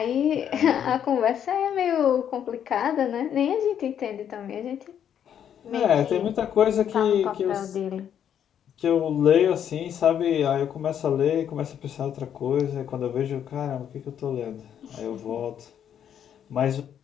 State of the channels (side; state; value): right; quieter; 9.2 dB